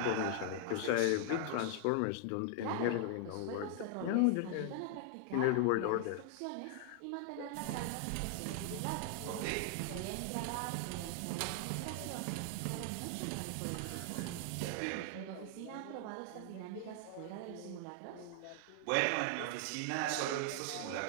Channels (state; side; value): different; both; correlation 0.00